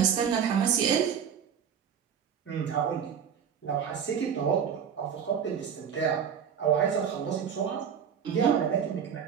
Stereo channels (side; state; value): left; quieter; 7.8 dB